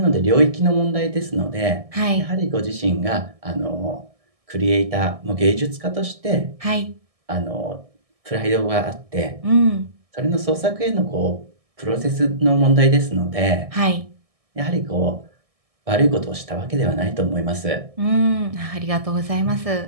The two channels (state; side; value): late; left; 1.6 ms